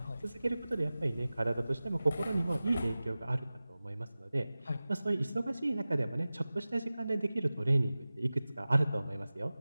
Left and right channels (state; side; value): inverted; both; correlation -0.97